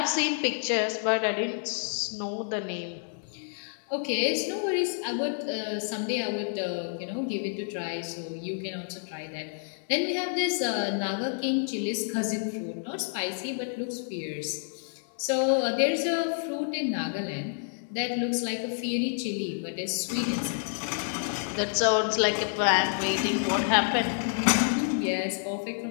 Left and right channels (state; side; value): silent; right; digital silence